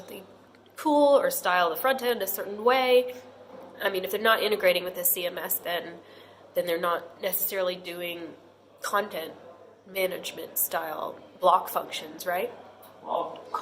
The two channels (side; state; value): both; identical; correlation 1.00